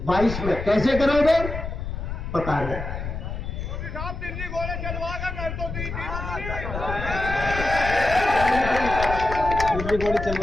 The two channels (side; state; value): left; noise; rumble, 6 dB below the sound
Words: 22 में, कैसे करोगे पता नहीं। दिल्ली घोड़े चलवा कर कर दो, दिल्ली घोड़े